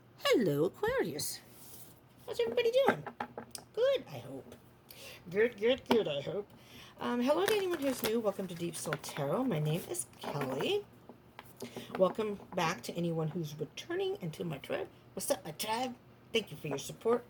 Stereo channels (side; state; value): both; identical; correlation 1.00